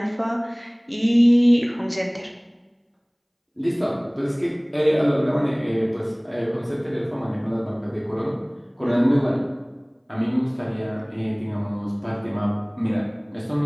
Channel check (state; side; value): identical; both; correlation 1.00